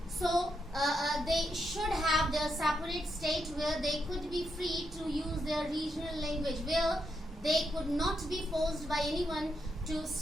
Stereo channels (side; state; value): both; normal; correlation 0.81